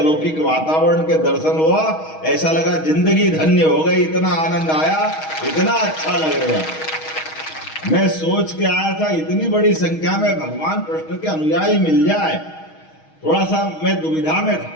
वातावरण के दर्शन हुआ। ऐसा लगा जिंदगी धन्य हो गई, इतना आनंद आया, इतना अच्छा लग रहा। मैं सोच के आया था इतनी बड़ी संख्या में भगवान कृष्ण के अनुयायी मिल जाए, थोड़ा सा मैं दुविधा में था।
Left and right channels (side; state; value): right; late; 6.3 ms